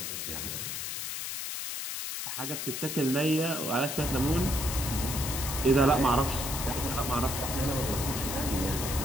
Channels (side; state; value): left; noise; hiss, 4 dB below the sound